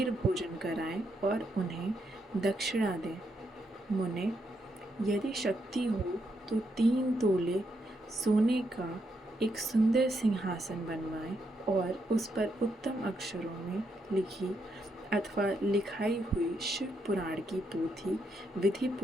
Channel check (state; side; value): normal; both; correlation 0.79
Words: भोजन कराएं और उन्हें दक्षिणा दें। मुने, यदि शक्ति हो तो 3 तोले सोने का एक सुंदर सिंहासन बनवाएं और उस पर उत्तम अक्षरों में लिखी अथवा लिखाई हुई शिव पुराण की पोथी विधि